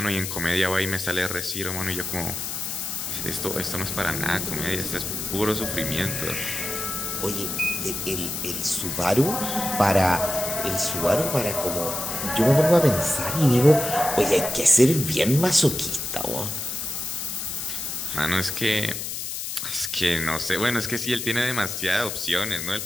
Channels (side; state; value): left; noise; hiss, 5 dB below the sound